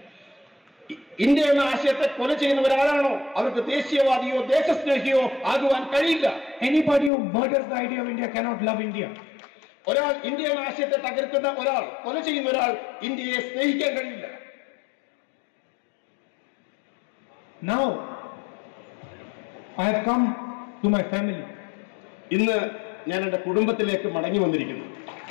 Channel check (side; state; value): right; drops out; at 7.1 s